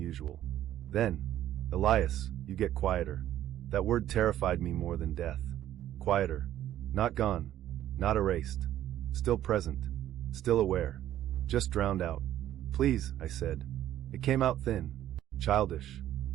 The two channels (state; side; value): quieter; left; 12.4 dB